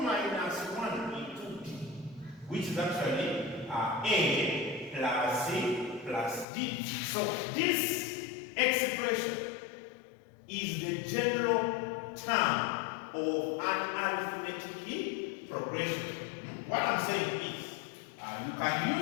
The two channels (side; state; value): right; drops out; at 6.5 s